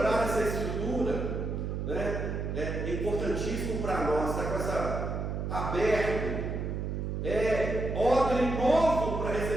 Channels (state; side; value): noise; right; hum, 3 dB below the sound